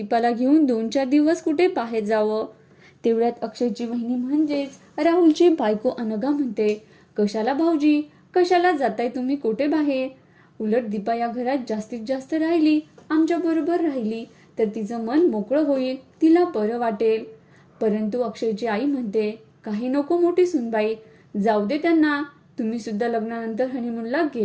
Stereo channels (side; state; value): both; identical; correlation 1.00